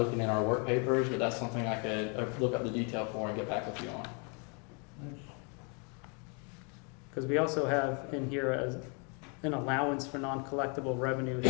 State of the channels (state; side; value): quieter; right; 35.8 dB